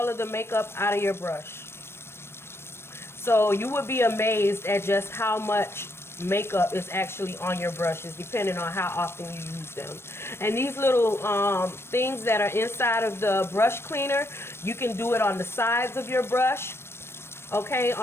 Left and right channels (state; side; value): late; right; 0.12 ms